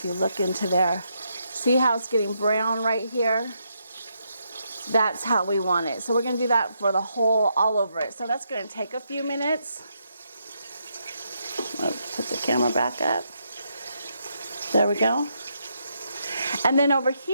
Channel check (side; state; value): both; inverted; correlation -0.79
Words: you look into there. See how it's getting brown right here? That's how we want it. So we're going to do that for the whole, all over it. So that's going to take a few minutes. I'll put the camera back up. There we go. And then over